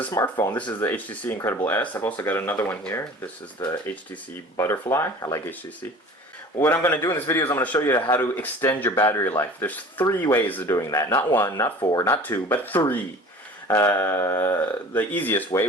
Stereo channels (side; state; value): both; normal; correlation 0.42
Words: smartphone. This is the HTC Incredible S. I've also got another one here. This is the HTC Butterfly. I like HTC. What I'm going to do in this video is I'm going to show you how to extend your battery life. There's 3 ways of doing that. Not 1, not 4, not 2, but 3. The easiest way